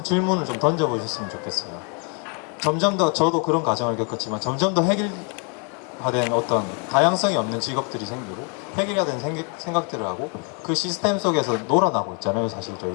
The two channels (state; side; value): quieter; right; 37.1 dB